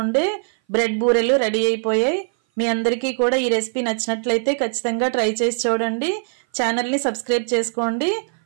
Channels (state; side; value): silent; left; 58 dB below the other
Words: ఉండే బ్రెడ్ బూరెలు రెడీ అయిపోయాయి. మీ అందరికీ కూడా ఈ రెసిపీ నచ్చినట్లయితే ఖచ్చితంగా ట్రై చేసి చూడండి. ఛానల్ని సబ్స్క్రైబ్ చేసుకోండి.